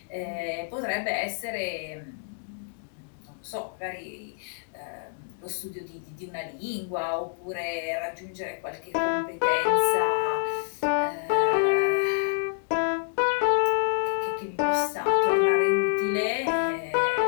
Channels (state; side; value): silent; right; digital silence